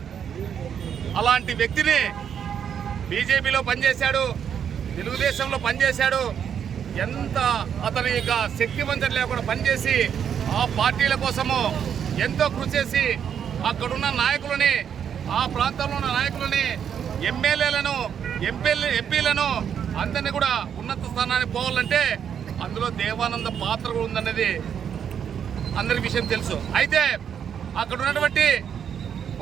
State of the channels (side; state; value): left; quieter; 8.2 dB